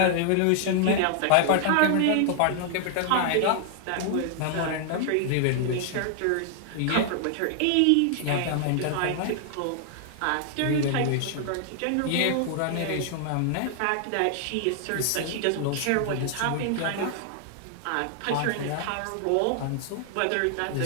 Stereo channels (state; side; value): different; both; correlation 0.00